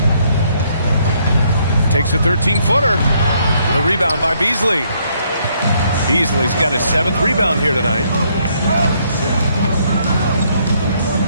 Takes a 13-footer. The rebound by Beasley. Beasley's got his 7th rebound here tonight.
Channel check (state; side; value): inverted; both; correlation -0.70